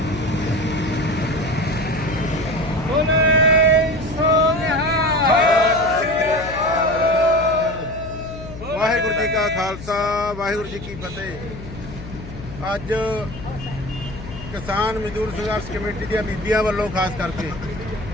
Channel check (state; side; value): noise; left; hum, 12 dB below the sound